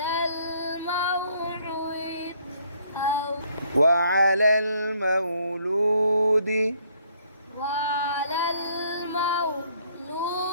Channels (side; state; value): both; inverted; correlation -0.65